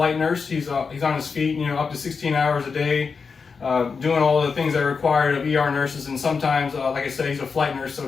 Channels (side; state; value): right; quieter; 5.2 dB